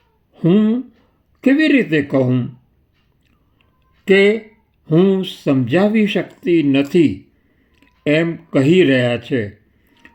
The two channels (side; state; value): both; identical; correlation 1.00